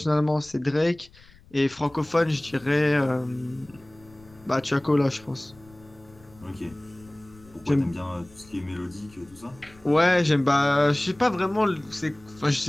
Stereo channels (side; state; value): left; noise; rumble, 25 dB below the sound